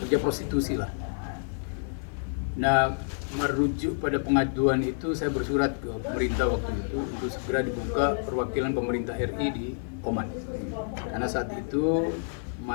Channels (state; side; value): silent; right; 59 dB below the other